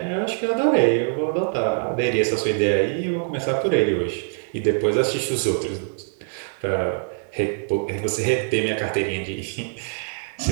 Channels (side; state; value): left; silent; digital silence